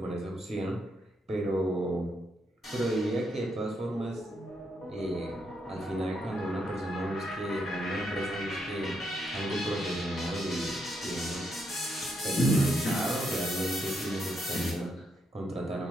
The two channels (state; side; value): normal; both; correlation 0.78